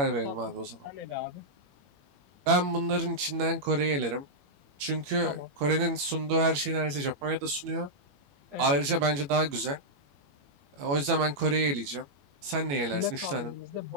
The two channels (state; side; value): late; left; 21 ms